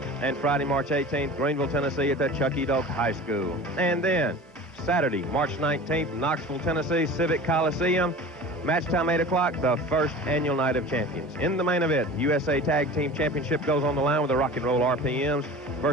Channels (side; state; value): both; normal; correlation 0.37